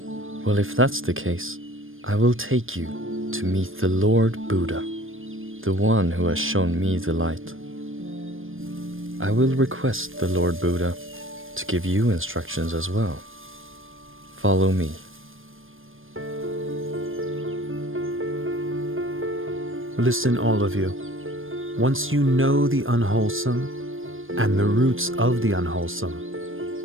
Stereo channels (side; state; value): left; late; 0.59 ms